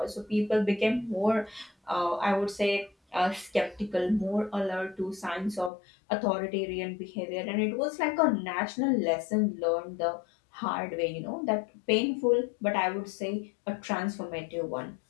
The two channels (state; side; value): drops out; right; at 5.7 s